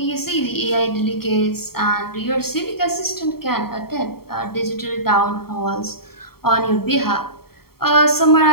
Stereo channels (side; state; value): right; late; 0.95 ms